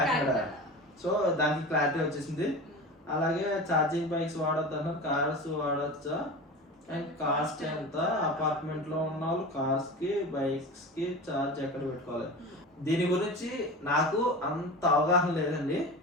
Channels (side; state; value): both; normal; correlation 0.31